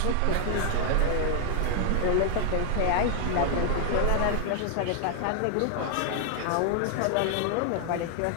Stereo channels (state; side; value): different; both; correlation 0.00